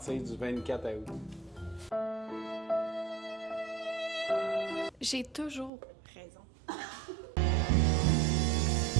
du 24 août. J'ai toujours raison.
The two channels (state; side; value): drops out; left; at 5.7 s